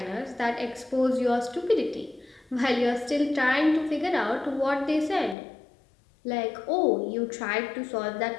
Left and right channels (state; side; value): drops out; right; at 5.4 s